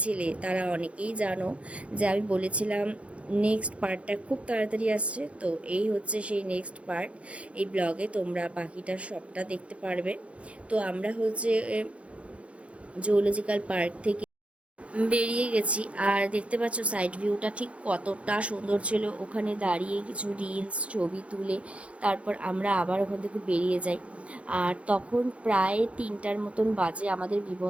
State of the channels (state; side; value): late; left; 0.062 ms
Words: তারা অনেকেই জানো যে আমি বলেছিলাম নেক্সট পার্টটা খুব তাড়াতাড়ি আসছে। তো এই হচ্ছে সেই নেক্সট পার্ট। এই ব্লগে তোমরা বাকিটা সবটা দেখতে পারবে। তো আমরা হচ্ছে জুওলজিক্যাল পার্ক থেকে বেরিয়ে গেছি আর দেখতে পাচ্ছ সাইড ভিউটা ঠিক কতটা সুন্দর ছিল। ওখানে দাঁড়িয়ে কিছু রিলস ছবি তুলে তারপর আমরা আবার ওখান থেকে বেরিয়ে যাই। আর তখন প্রায় 3টার মতন বাজে। আমাদের